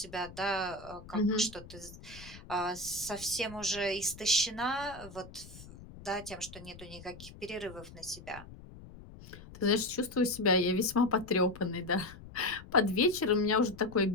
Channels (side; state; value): left; noise; rumble, 17 dB below the sound